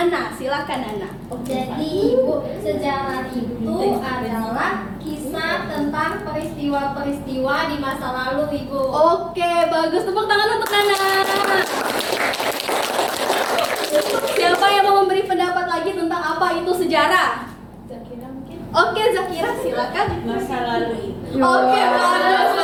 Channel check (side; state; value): both; identical; correlation 1.00